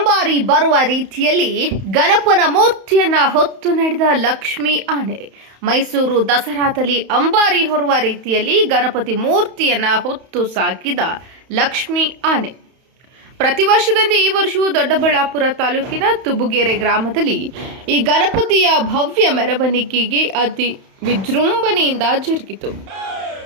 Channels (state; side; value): late; left; 31 ms